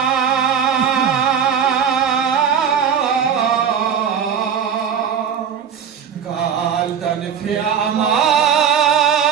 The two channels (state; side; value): quieter; left; 7.7 dB